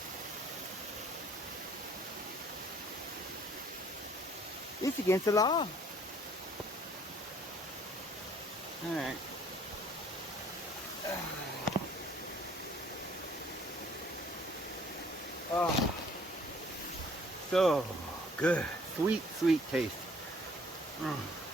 It's against the law. Alright. Oh. So good. Sweet, sweet taste.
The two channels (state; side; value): normal; both; correlation 0.58